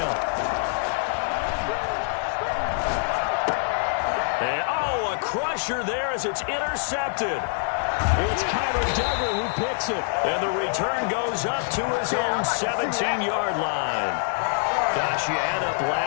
And, oh, a crusher there as it's intercepted. It's Kyler Duggar who picks it. And the return goes up to his own 17-yard line. Gosh, you add up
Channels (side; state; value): right; silent; 62 dB below the other